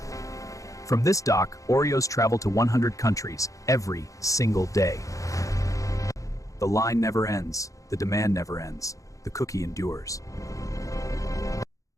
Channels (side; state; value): right; late; 0.16 ms